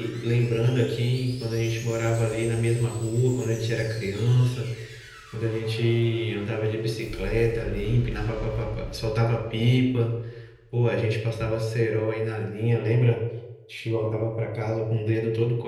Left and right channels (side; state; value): both; identical; correlation 1.00